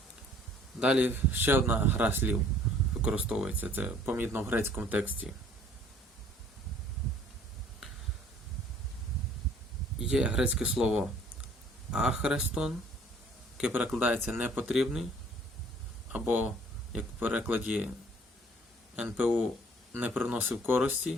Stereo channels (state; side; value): normal; both; correlation 0.56